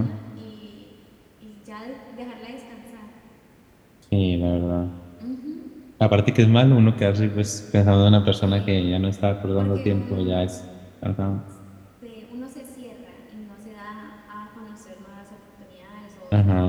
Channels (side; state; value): both; identical; correlation 1.00